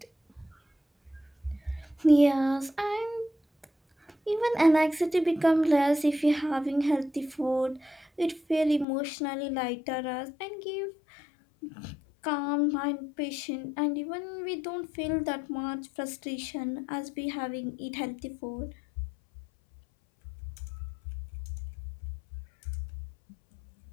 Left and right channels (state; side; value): drops out; right; at 8.8 s